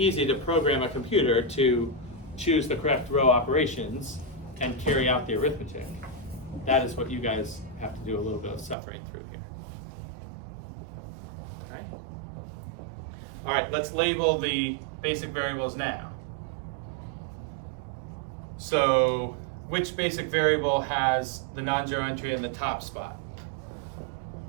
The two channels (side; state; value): left; drops out; at 8.8 s